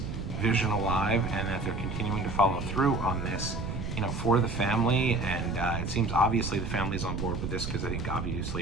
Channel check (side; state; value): right; noise; rumble, 5 dB below the sound